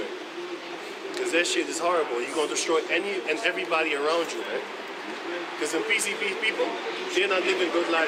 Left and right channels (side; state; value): both; identical; correlation 1.00